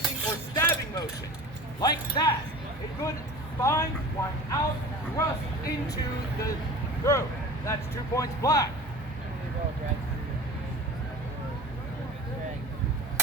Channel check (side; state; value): both; normal; correlation 0.37